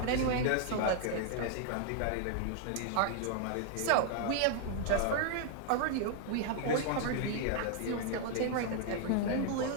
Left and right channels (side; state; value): both; different; correlation 0.00